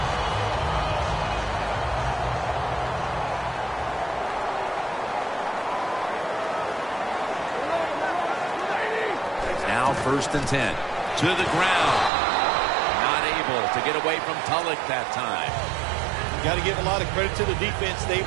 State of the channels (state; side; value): drops out; left; at 12.1 s